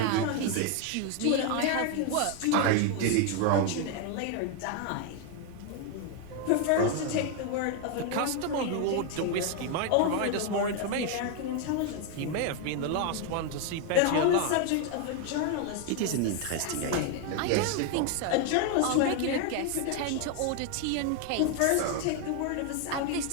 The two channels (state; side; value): different; both; correlation 0.01